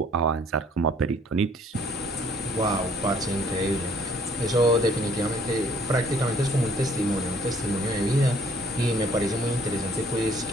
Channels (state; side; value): normal; both; correlation 0.60